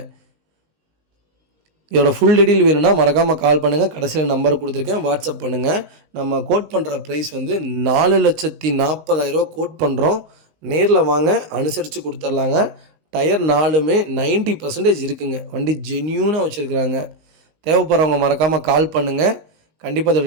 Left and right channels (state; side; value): late; left; 19 ms